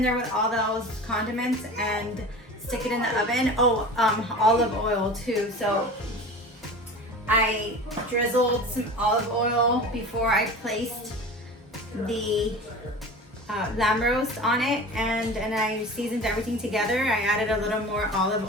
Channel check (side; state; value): both; normal; correlation 0.35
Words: there with all those condiments, and stick it in the oven. Oh, olive oil too. So I drizzled some olive oil before I placed the lamb roast on it, and I seasoned everything together. I added a little more